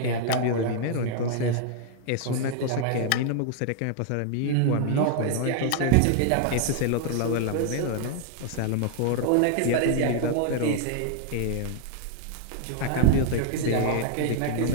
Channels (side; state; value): both; different; correlation 0.00